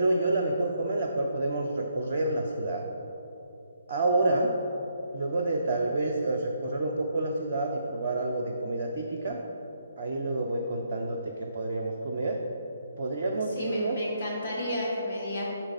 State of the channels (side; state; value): both; inverted; correlation -0.74